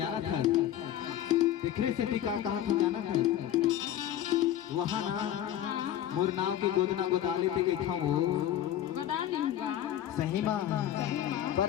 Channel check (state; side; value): quieter; right; 11.6 dB